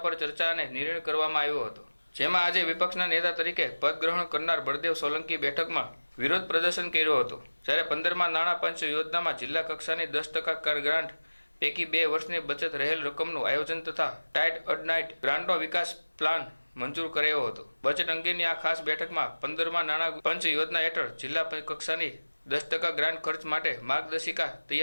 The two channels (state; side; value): inverted; both; correlation -1.00